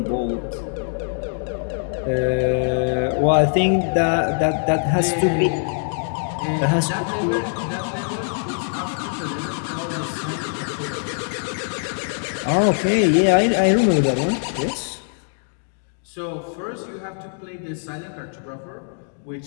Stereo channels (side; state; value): right; silent; digital silence